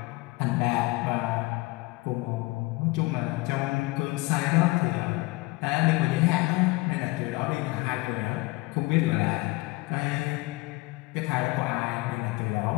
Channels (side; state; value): right; quieter; 23.0 dB